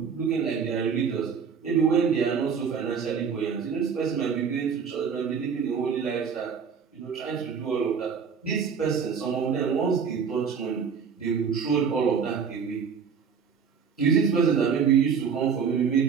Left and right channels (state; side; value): quieter; left; 6.4 dB